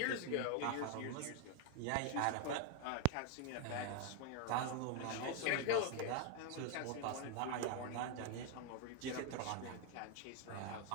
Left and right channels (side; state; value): both; different; correlation 0.01